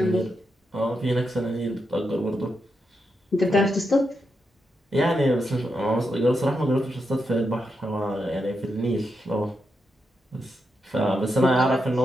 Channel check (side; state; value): both; normal; correlation 0.84